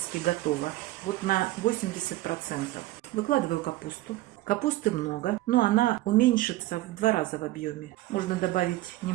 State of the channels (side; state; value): left; quieter; 17.0 dB